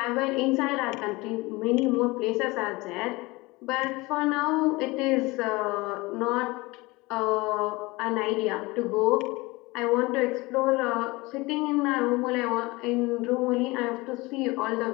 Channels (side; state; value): right; quieter; 22.8 dB